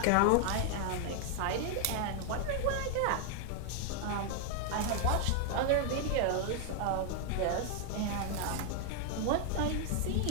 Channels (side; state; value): both; different; correlation 0.00